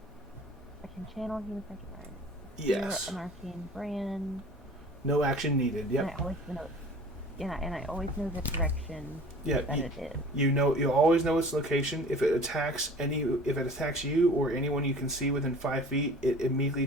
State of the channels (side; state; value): both; normal; correlation 0.44